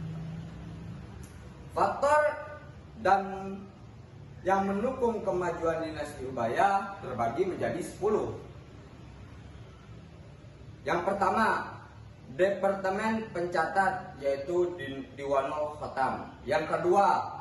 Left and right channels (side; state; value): both; identical; correlation 1.00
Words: Faktor dan yang mendukung kemajuan dinasti Umayyah terbagi menjadi 10. Yang pertama, Departemen Pencatat, yaitu Diwanul Khatam. Yang kedua,